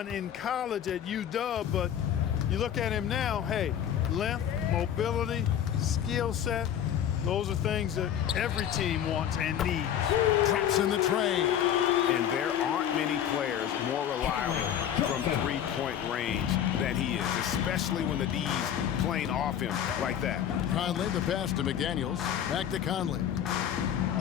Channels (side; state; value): right; quieter; 9.8 dB